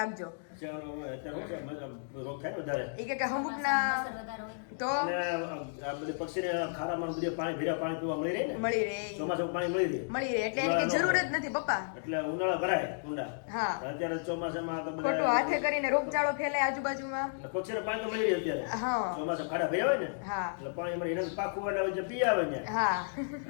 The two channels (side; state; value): right; silent; digital silence